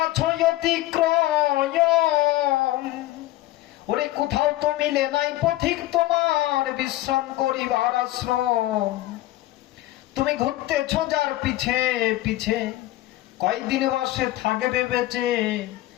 অতিক্রম, ওরে কোথাও তো মিলে নাই পথিক তোমার বিশ্রাম করিবার আশ্রম। তুমি ঘুরতেছ যার পিছে পিছে, কয়দিন বসে থাকবে বেঁচে,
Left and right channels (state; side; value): quieter; right; 16.4 dB